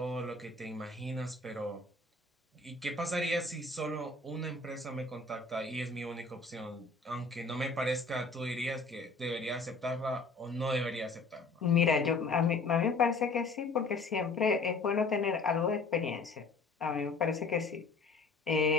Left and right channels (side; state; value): right; quieter; 3.6 dB